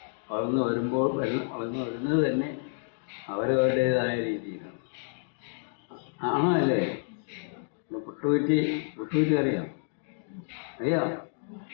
വളർന്നു വരുന്നത് തന്നെ അവരവരുടേതായ രീതിയിലാണ്. ആണോ അല്ലേ? പുട്ടുകുറ്റി അറിയാം?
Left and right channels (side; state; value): right; silent; digital silence